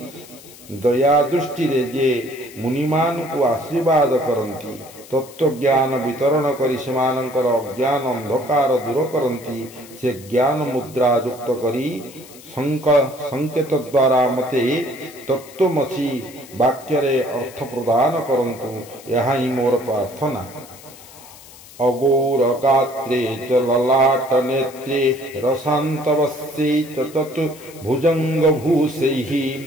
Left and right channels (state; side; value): noise; left; hiss, 20 dB below the sound